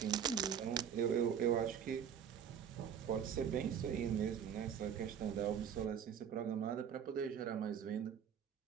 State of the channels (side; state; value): left; quieter; 8.3 dB